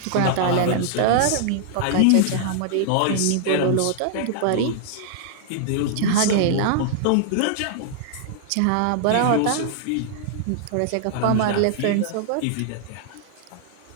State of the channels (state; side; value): different; both; correlation -0.01